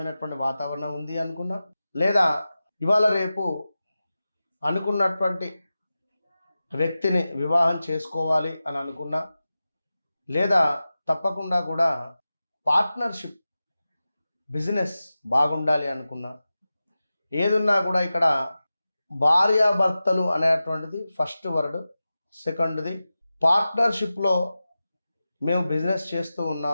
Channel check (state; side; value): inverted; both; correlation -0.94